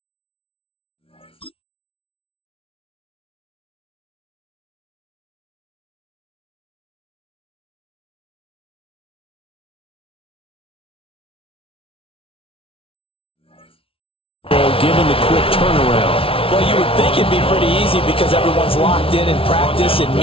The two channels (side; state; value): right; late; 0.26 ms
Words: given the quick turnaround? Well, you would think it'd be pretty easy because everyone's locked in practice and